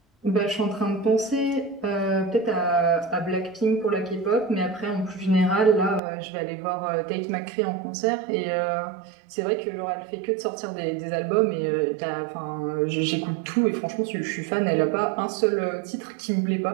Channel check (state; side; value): drops out; left; at 6.0 s